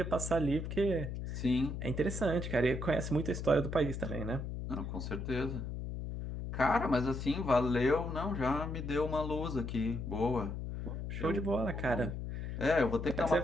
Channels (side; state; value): left; noise; hum, 5 dB below the sound